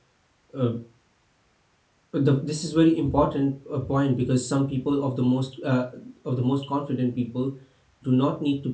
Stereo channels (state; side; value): identical; both; correlation 1.00